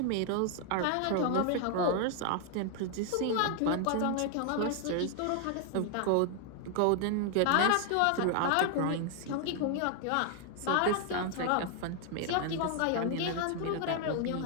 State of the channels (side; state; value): both; different; correlation 0.00